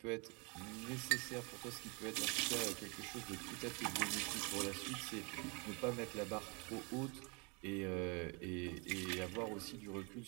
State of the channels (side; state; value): left; quieter; 31.3 dB